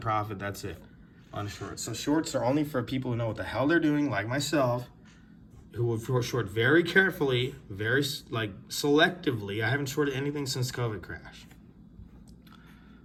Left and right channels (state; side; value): identical; both; correlation 1.00